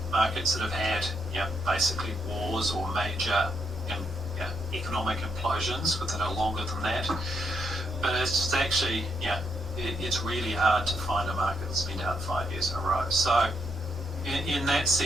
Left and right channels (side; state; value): both; normal; correlation 0.78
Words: markets that have had basically wars or major economic implosions within a longer than that. But it's actually, it's really hard to find a market that's been down 5 years in a row. So in that